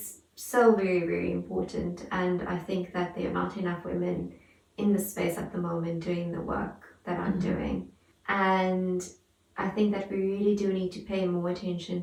so very, very important, and I think that there are not enough women in the space at the moment doing the work that I'm doing. And I think that we really do need to pay more attention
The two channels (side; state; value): both; identical; correlation 1.00